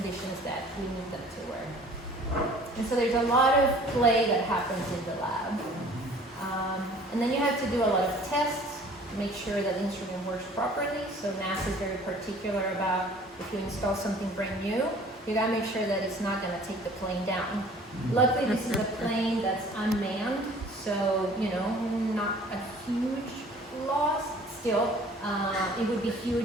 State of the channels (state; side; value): normal; both; correlation 0.51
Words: that we need them to work. And so there's a lot of play that happens in the lab. And then you have to do a lot of tests to make sure that the instrument works properly. So NASA is very particular about if you install something brand new, you gotta make sure that it's not gonna take the plane down. Luckily, this is a plane that's unmanned, so, not a huge loss. Still, it would be